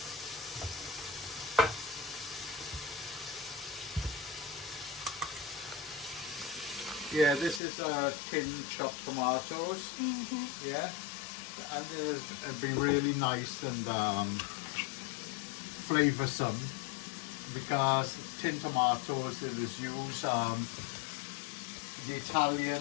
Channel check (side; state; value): right; drops out; at 7.6 s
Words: Yeah, this is tin chopped tomatoes. Yeah, and it'll be really nice and flavoursome because tin tomatoes it is used the